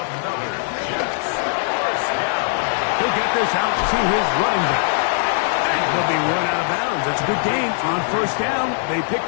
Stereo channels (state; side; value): silent; right; digital silence